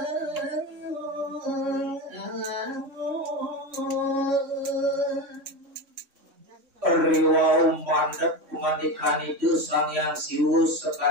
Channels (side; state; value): left; late; 3.6 ms